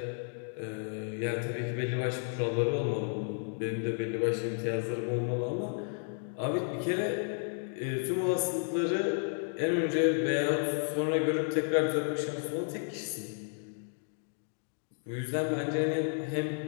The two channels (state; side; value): silent; right; 56 dB below the other